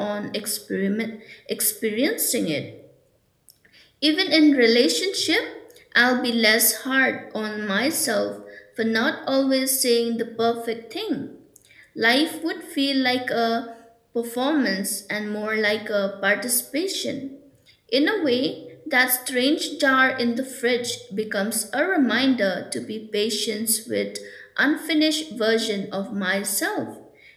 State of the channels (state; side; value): identical; both; correlation 1.00